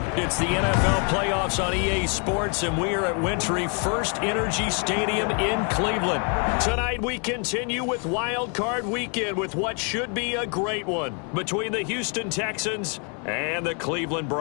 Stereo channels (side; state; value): right; quieter; 37.3 dB